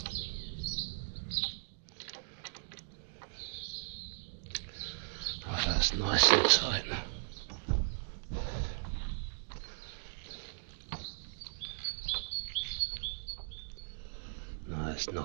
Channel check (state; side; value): silent; left; digital silence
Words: Right, that's nice and tight. No, it's